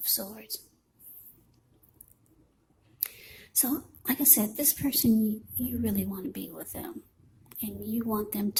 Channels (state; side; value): identical; both; correlation 1.00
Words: Swords. So, like I said, this person, you really want to be with them, and you want them